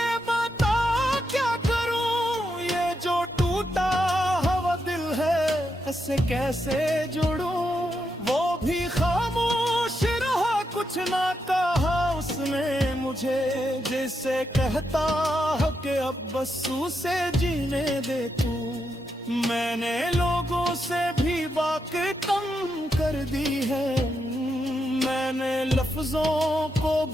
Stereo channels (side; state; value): both; normal; correlation 0.83